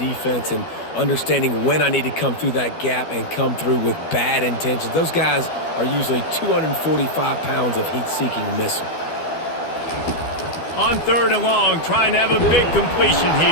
and understanding when I need to come through that gap and come through with bad intentions. Those guys are usually 245 pounds of heat-seeking missile. On 3rd and long, trying to have a big completion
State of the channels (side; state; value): right; late; 12 ms